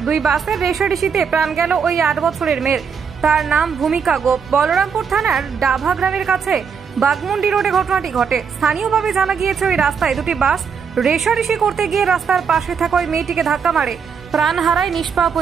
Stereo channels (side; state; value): left; quieter; 6.4 dB